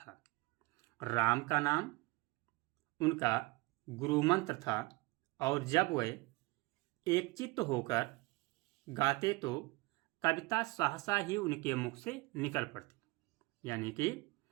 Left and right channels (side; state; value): left; quieter; 23.1 dB